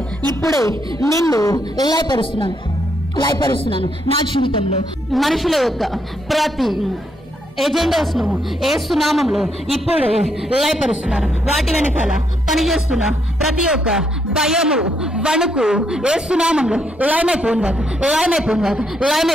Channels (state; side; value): normal; both; correlation 0.76